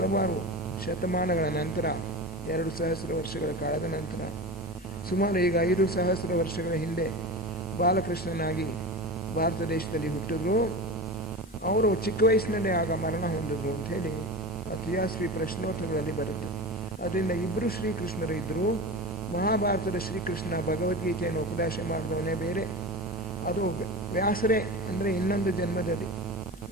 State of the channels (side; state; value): both; normal; correlation 0.28